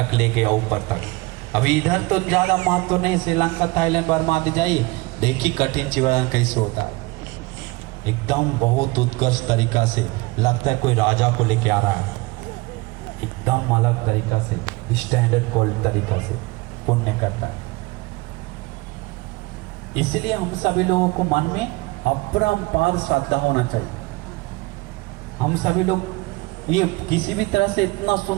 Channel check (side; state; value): left; quieter; 23.3 dB